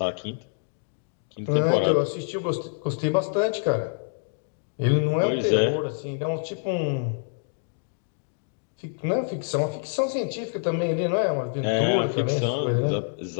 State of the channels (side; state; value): right; silent; digital silence